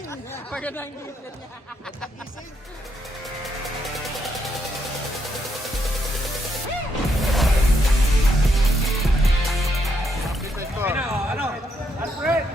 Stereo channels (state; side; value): normal; both; correlation 0.77